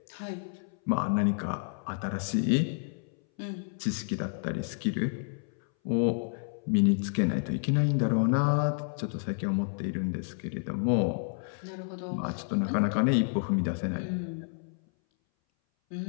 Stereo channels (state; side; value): silent; right; 58 dB below the other